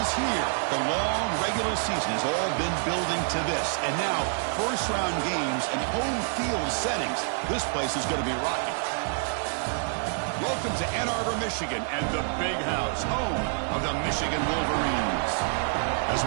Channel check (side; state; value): left; silent; 60 dB below the other